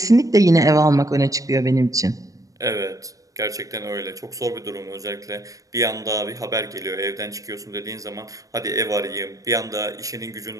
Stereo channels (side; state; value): left; late; 0.16 ms